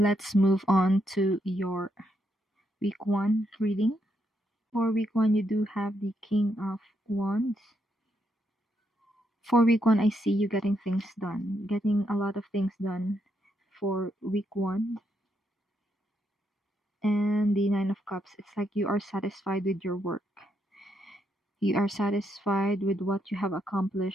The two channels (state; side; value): normal; both; correlation 0.78